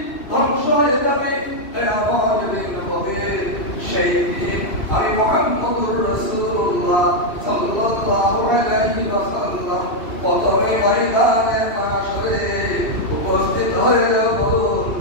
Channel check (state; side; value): late; right; 2.7 ms